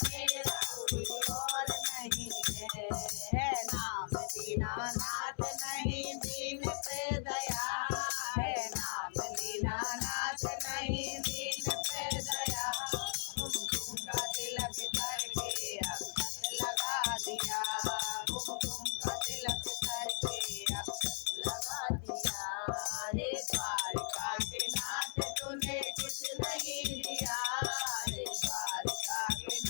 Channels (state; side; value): silent; right; 53 dB below the other